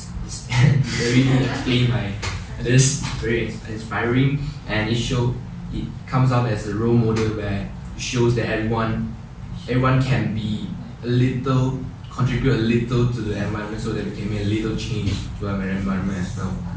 it's very explain my this very inspiring, and it comes out as a role model where it shows that everyone can be a little, contribute a little to the environment so that we can make a little change to our environment as well.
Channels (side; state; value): both; identical; correlation 1.00